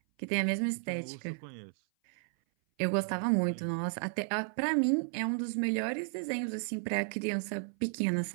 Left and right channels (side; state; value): left; silent; 56 dB below the other